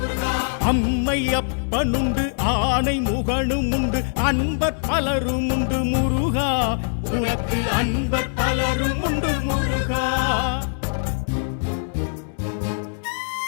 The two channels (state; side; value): silent; right; digital silence